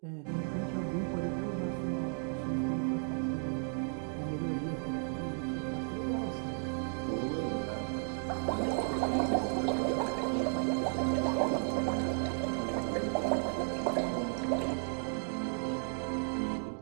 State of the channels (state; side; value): silent; left; 55 dB below the other